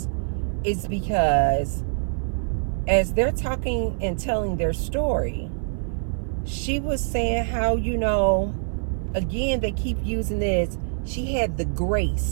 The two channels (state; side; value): silent; left; 56 dB below the other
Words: is because as they're talking and telling their story, she was saying how, again, they keep using this, she had the